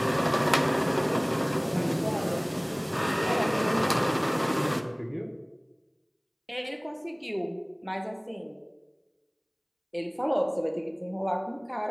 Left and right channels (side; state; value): both; identical; correlation 1.00